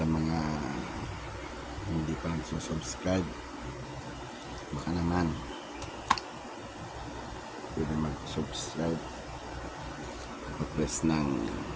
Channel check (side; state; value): both; identical; correlation 1.00